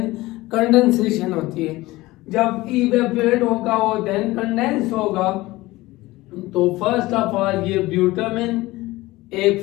कंडेंसेशन होती है। जब इवेपोरेट होगा और देन कंडेंस होगा तो फर्स्ट ऑफ ऑल ये ब्यूटामिन एक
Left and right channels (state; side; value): quieter; right; 19.3 dB